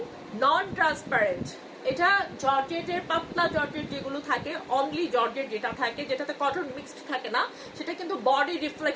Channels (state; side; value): identical; both; correlation 1.00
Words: নন ট্রান্সপারেন্ট। এটা জর্জেটের, পাতলা জর্জেট যেগুলো থাকে, অনলি জর্জেট যেটা থাকে, যেটাতে কটন মিক্সড থাকে না, সেটা কিন্তু বডি